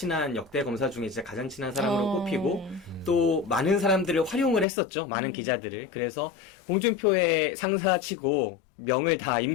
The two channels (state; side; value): drops out; right; at 4.7 s